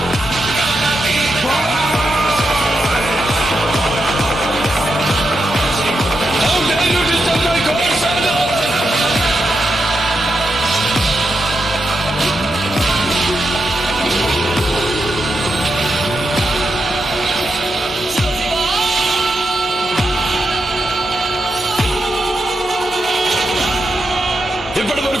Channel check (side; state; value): both; normal; correlation 0.85